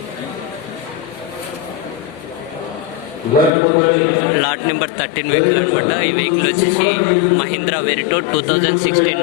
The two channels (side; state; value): right; drops out; at 3.5 s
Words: లాట్ నెంబర్ 13 వెహికల్ అనమాట. ఈ వెహికల్ వచ్చేసి మహీంద్రా వెరిటో 2016